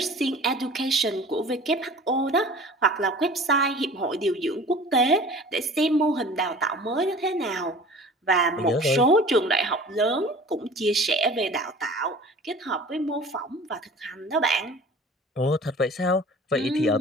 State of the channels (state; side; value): normal; both; correlation 0.43